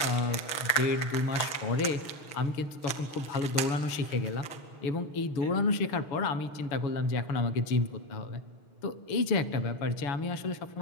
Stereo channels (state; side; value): late; right; 6.5 ms